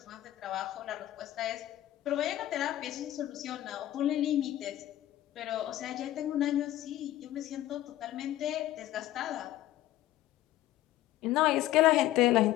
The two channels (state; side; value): quieter; right; 14.2 dB